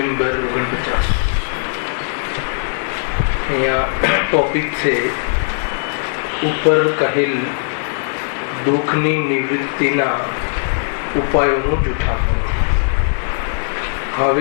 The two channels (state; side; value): silent; right; digital silence